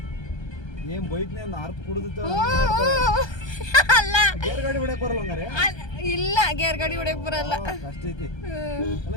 ಏನ್ ಬೈಕ್ನೇ ಅರ್ಥ ಕುಡಿದ ಅಲ್ಲ ಗೇರ್ ಗಾಡಿ ಹೊಡಕ್ ಬರಲ್ಲ ಹಂಗಾರೆ. ಇಲ್ಲ, ಗೇರ್ ಗಾಡಿ ಹೊಡಕ್ ಬರಲ್ಲ. ಅಷ್ಟ ಐತಿ. ಅಲ್ಲ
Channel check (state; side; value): late; right; 1.3 ms